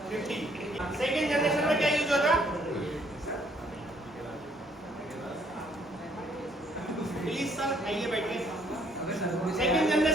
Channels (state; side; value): normal; both; correlation 0.66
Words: सेकेंड जनरेशन में क्या यूज होता? प्लीज सर आइए बैठिए। सेकेंड